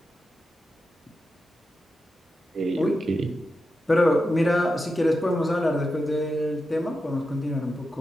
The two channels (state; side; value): normal; both; correlation 0.89